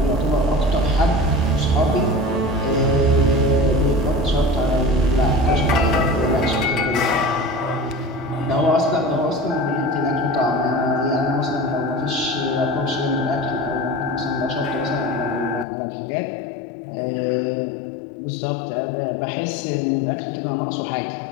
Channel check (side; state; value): right; drops out; at 15.7 s